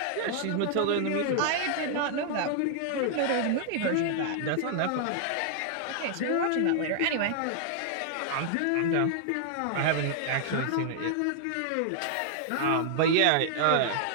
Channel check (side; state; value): both; different; correlation -0.01